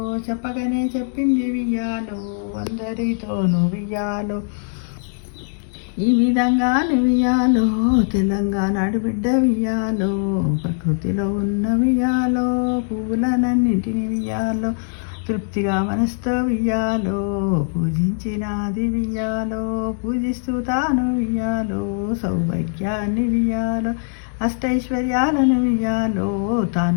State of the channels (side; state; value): right; silent; 65 dB below the other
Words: చెప్పగానే చెప్పింది వియాలో, అందరితోనూ వియాలో, ఈ విధంగా నువ్వియాలో తెలంగాణ ఆడబిడ్డ వియ్యాలో ప్రకృతిలో ఉన్న వియ్యాలో పువ్వులనన్నింటిని వియ్యాలో తృప్తిగా మనసుతో వియ్యాలో పూజించినాది వియ్యాలో పూజిస్తూ తాను వియ్యాలో సౌభాగ్యాన్ని వియ్యాలో అష్టైశ్వర్యాలను వియ్యాలో